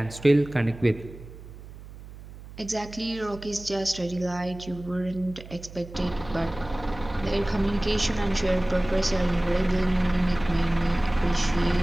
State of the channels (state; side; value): noise; right; hum, 16 dB below the sound